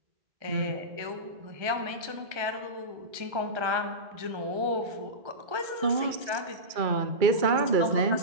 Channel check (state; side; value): late; left; 2.3 ms